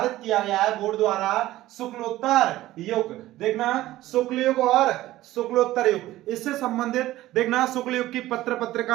किया गया है बोर्ड द्वारा शुक्लोत्तर युग। देखना शुक्ल युग और शुक्लोत्तर युग, इससे संबंधित देखना शुक्ल युग की पत्र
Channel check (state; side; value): quieter; left; 15.8 dB